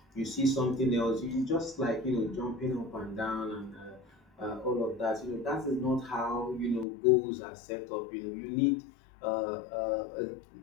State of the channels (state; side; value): drops out; right; at 6.9 s